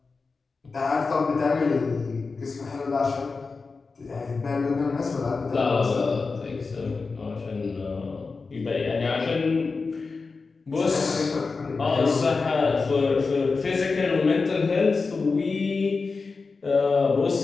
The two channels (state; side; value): quieter; right; 4.3 dB